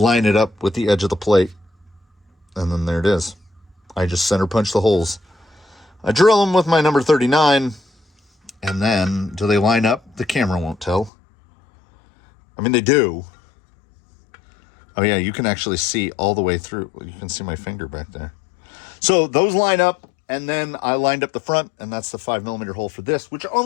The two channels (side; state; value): right; drops out; at 11.1 s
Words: it up with the edge of the plate, and then there it is. I just center punch the holes. I drill them with my number 39, and then do they line up? The camera won't tell. I mean, they do. Oh yeah, you can actually see all the way through. You can see my finger back there. So those line up, and then I lined up the front, and that's the 5mm hole for this, which